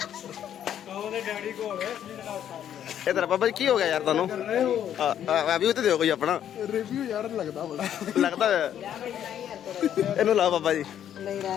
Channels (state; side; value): quieter; right; 10.1 dB